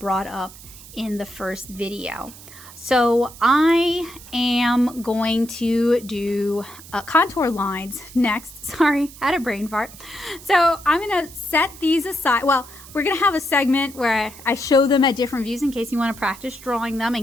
up in the first video. So I am going to do contour lines next. Sorry, had a brain fart. So I'm gonna set these aside. Well, we're gonna have a segment where I show them at different views in case you wanna practice drawing them,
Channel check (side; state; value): right; noise; hiss, 18 dB below the sound